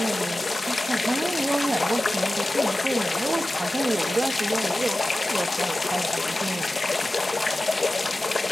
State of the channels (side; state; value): both; normal; correlation 0.95